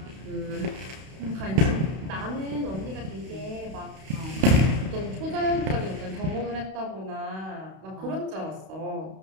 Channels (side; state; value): left; late; 32 ms